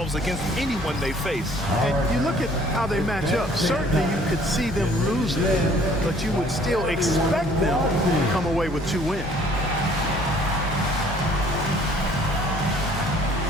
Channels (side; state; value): both; normal; correlation 0.57